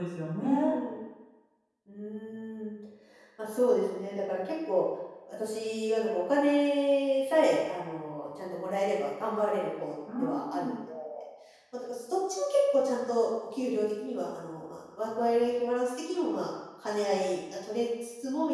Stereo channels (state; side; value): identical; both; correlation 1.00